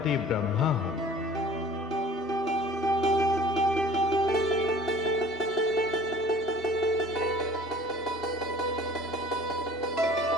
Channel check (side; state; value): both; normal; correlation 0.48